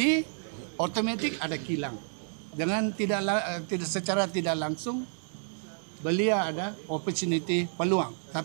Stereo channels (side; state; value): left; silent; 58 dB below the other